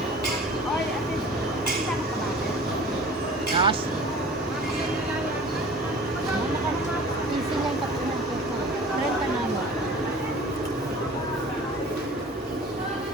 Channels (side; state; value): both; normal; correlation 0.43